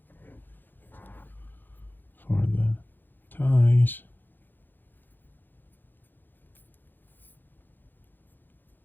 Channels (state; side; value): late; right; 0.090 ms